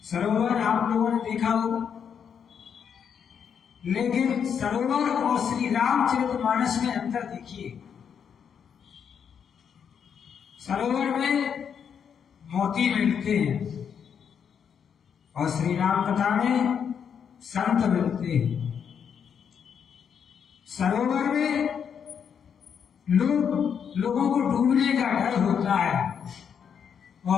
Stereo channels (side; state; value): right; quieter; 7.5 dB